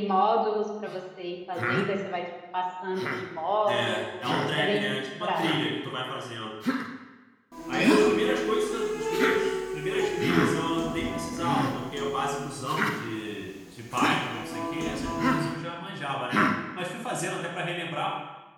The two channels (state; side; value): identical; both; correlation 1.00